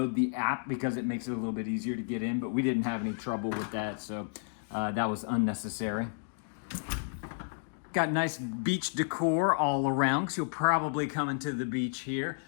the app because it makes it a little bit easier to get in, but we didn't have any trouble with that, so that was unnecessary. Got nice beach decor all around, because you'll probably come into the beach here,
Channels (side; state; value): right; silent; digital silence